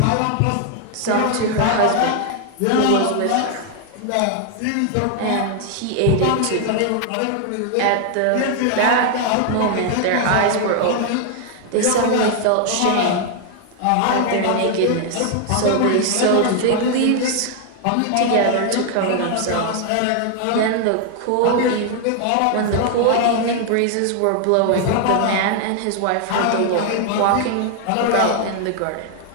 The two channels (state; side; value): different; both; correlation 0.00